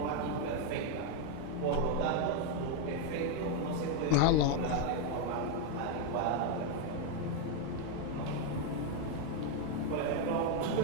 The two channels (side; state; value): both; different; correlation 0.01